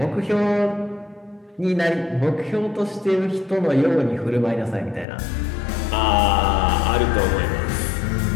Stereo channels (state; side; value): drops out; right; at 5.1 s